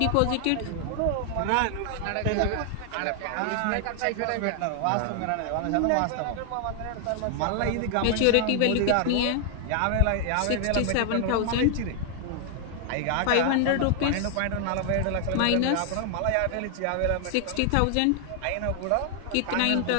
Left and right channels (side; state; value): both; different; correlation 0.00